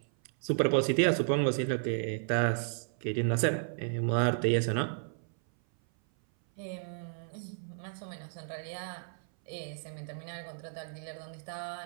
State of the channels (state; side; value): silent; left; 56 dB below the other